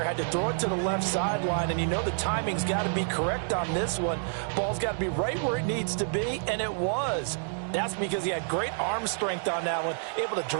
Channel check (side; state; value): left; silent; digital silence